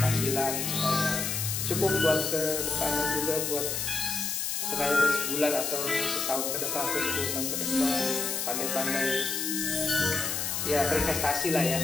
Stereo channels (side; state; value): left; noise; hiss, 1 dB below the sound